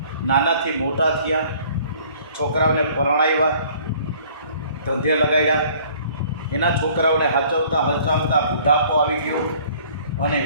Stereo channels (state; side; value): inverted; both; correlation -0.55